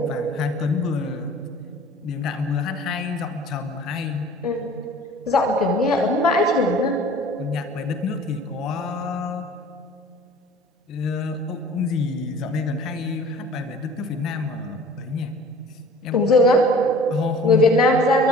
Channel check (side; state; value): both; normal; correlation 0.47